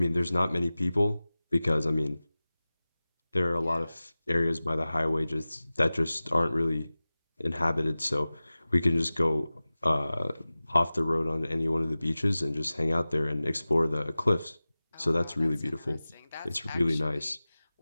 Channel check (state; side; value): inverted; both; correlation -0.97